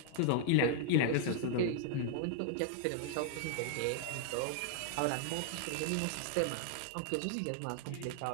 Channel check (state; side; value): different; both; correlation -0.01